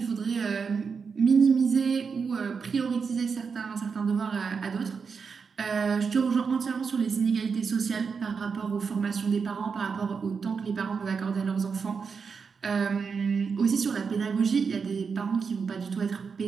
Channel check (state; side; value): quieter; left; 5.6 dB